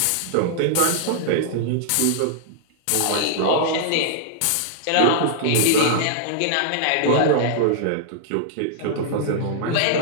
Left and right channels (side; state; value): both; different; correlation -0.01